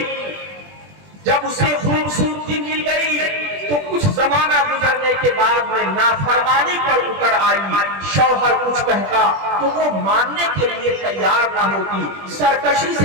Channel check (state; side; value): late; left; 20 ms